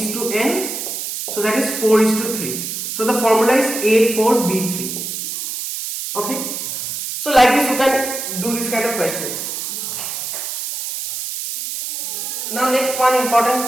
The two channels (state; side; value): noise; right; hiss, 5 dB below the sound